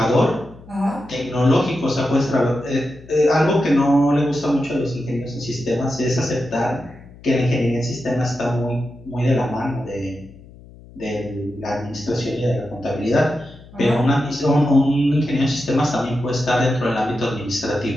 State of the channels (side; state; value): left; noise; hum, 21 dB below the sound